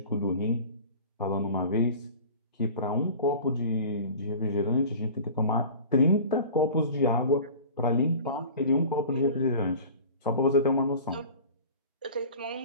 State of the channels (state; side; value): inverted; both; correlation -0.40